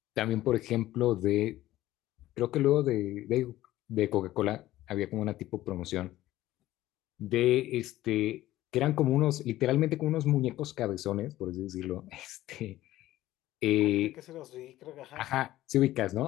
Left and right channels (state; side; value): quieter; right; 15.3 dB